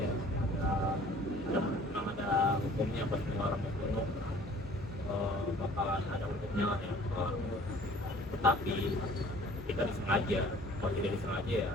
Ya, memang ada hukumnya pas orang membunuh, bakalan ada hukumnya lah ya. Tetapi kita disengaja, kalau tidak disengaja ya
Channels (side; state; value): both; normal; correlation 0.51